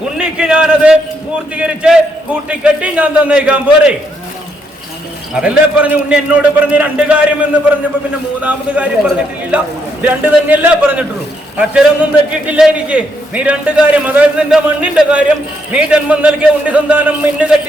ഉണ്ണിക്ക് ഞാനത് പൂർത്തീകരിച്ച് കൂട്ടിക്കെട്ടി ഞാൻ തന്നേക്കാൻ പോരെ. അതല്ലേ പറഞ്ഞു. ഉണ്ണി എന്നോട് പറഞ്ഞ് 2 കാര്യം എന്ന് പറഞ്ഞപ്പോ പിന്നെ 3ാമത് കാര്യം പറഞ്ഞിട്ടില്ല. 2 തന്നെയല്ലേ പറഞ്ഞിട്ടുള്ളൂ. അക്ഷരമൊന്നും തെറ്റിയിട്ടില്ല എനിക്ക്. നീ 2 കാര്യം, അതായത് നിന്റെ മണ്ണിന്റെ കാര്യം, നീ ജന്മം നൽകിയ ഉണ്ണി സന്താനം മിന്നു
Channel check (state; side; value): normal; both; correlation 0.76